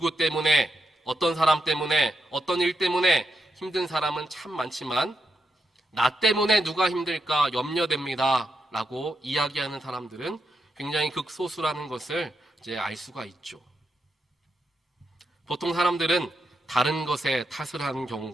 때문에, 어떤 사람 때문에, 어떤 일 때문에 힘든 사람은 참 많지만 나 때문에 누가 힘들까 염려됩니다 라고 이야기하는 사람들은 굉장히 극소수라는 것을 이제 알 수가 있죠. 보통 사람들은 다른 것에 탓을 하는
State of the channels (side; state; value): both; normal; correlation 0.83